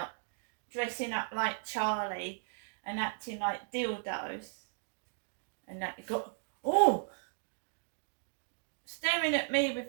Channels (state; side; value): silent; left; digital silence